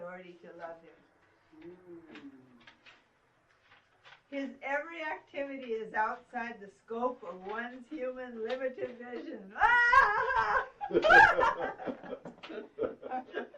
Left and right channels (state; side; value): identical; both; correlation 1.00